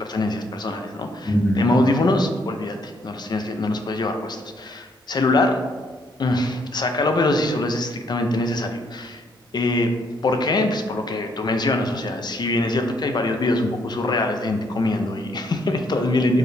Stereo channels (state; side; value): normal; both; correlation 0.70